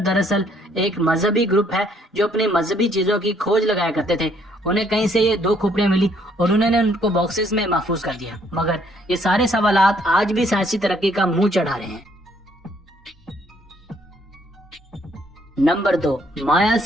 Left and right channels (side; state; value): both; normal; correlation 0.66